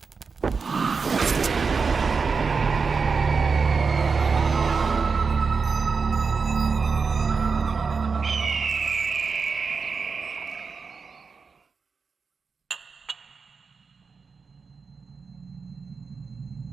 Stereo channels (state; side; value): quieter; left; 5.0 dB